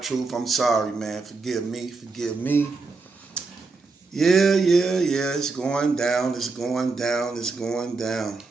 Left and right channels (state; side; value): quieter; left; 4.0 dB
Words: I'm sorry, man. Forgive me. Yeah. It's going down.